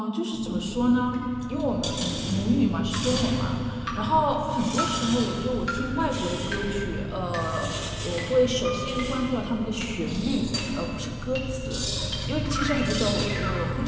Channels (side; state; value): both; identical; correlation 1.00